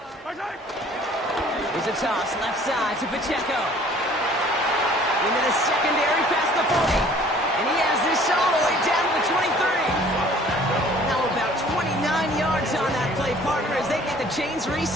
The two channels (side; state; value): both; normal; correlation 0.53